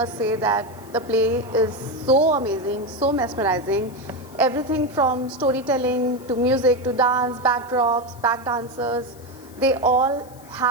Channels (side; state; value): left; noise; hiss, 24 dB below the sound